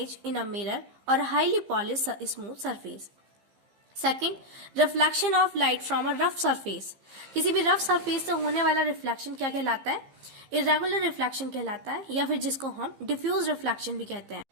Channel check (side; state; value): left; late; 15 ms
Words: in a mirror or highly polished smooth surface. Second, reflection of light from a rough surface. किसी भी रफ सरफेस से होने वाला रिफ्लेक्शन क्या कहलाता है? इरेगुलर रिफ्लेक्शन कहलाता है, या फिर जिसको हम डिफ्यूज रिफ्लेक्शन भी कहते हैं।